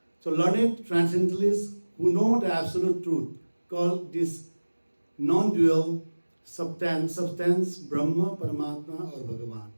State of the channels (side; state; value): both; inverted; correlation -1.00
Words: So learned transcendentalists who know the absolute truth call this non-dual substance Brahma, Paramatma or Bhagavan.